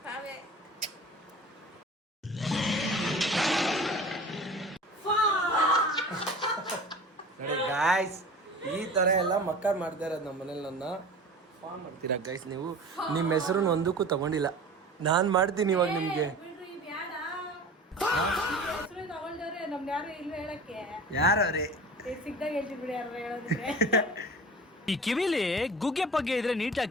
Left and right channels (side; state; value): both; normal; correlation 0.38